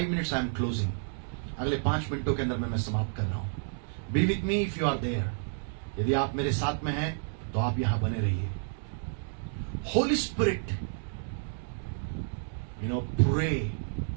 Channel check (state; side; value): silent; left; digital silence